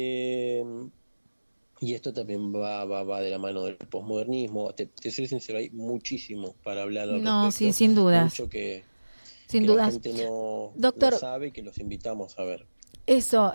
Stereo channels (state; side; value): inverted; both; correlation -1.00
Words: Y esto también va de la mano del posmodernismo. Te soy sincero, hay muchísimo para hablar al No, sí, respecto, sin dudas, mucho sin que la dudas. gente no Doctor, sabe y que los invitamos a ver. eso